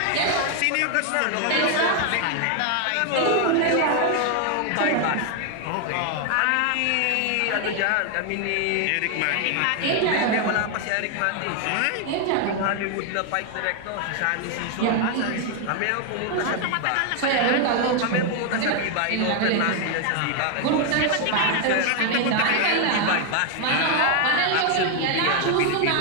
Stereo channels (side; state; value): both; different; correlation 0.00